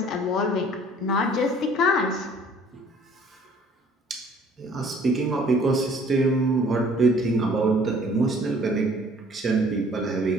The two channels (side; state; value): both; normal; correlation 0.55